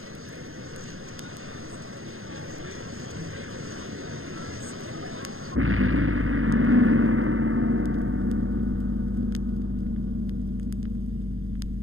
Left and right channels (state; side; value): late; left; 0.61 ms